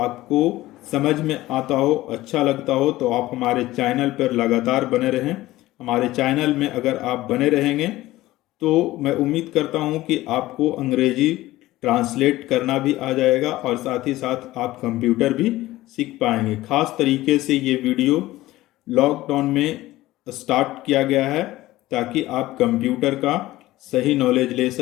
समझ में आता हो, अच्छा लगता हो, तो आप हमारे चैनल पर लगातार बने रहें। हमारे चैनल में अगर आप बने रहेंगे तो मैं उम्मीद करता हूं कि आपको अंग्रेजी ट्रांसलेट करना भी आ जाएगा, और साथ ही साथ आप कंप्यूटर भी सीख पाएंगे। खास तरीके से ये वीडियो लॉकडाउन में स्टार्ट किया गया है ताकि आप कंप्यूटर का सही नॉलेज ले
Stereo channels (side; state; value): right; quieter; 17.0 dB